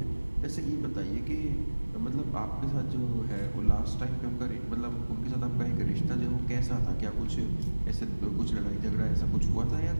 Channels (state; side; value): inverted; both; correlation -1.00